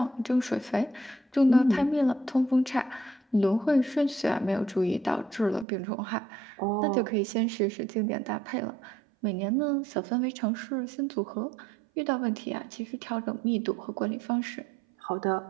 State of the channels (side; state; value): left; drops out; at 5.7 s